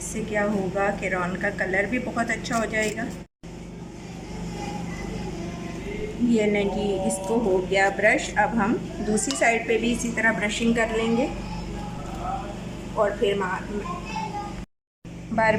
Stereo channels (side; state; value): both; identical; correlation 1.00